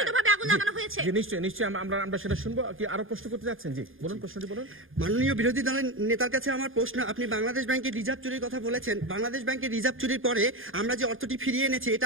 আগুন লাগানো হয়েছে। জি, নিশ্চয়ই আমরা সেটা শুনবো। কি আরো প্রশ্ন করতে যাচ্ছেন? জি বলুন, প্রশ্নটি বলুন। মাননীয় বিরোধী দলের নেতার কাছে আমার প্রশ্ন, আপনি বাংলাদেশ ব্যাংকের রিজার্ভ চুরির কথা বলেছেন, বাংলাদেশ ব্যাংকের রিজার্ভ চুরির পরে আমরা যে অর্থটি ফিরিয়ে এনেছি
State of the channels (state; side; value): late; left; 0.59 ms